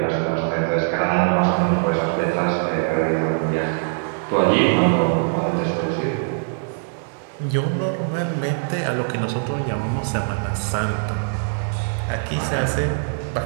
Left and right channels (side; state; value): left; silent; digital silence